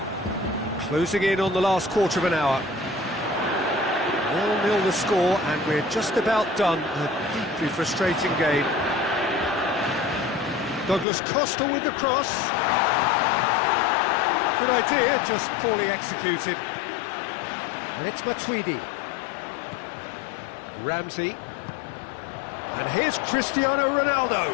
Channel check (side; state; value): right; drops out; at 11.1 s